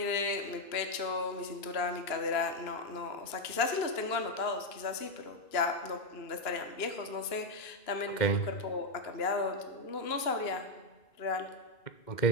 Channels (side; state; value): right; late; 2.9 ms